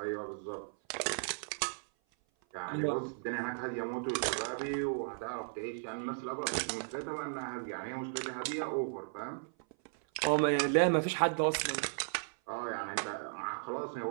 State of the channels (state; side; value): silent; left; 54 dB below the other